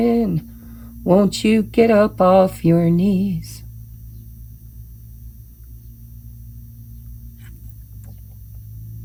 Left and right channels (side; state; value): both; identical; correlation 1.00